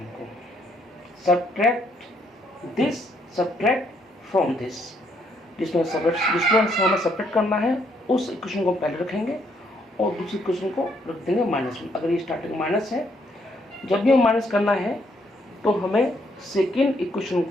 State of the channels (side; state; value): both; normal; correlation 0.71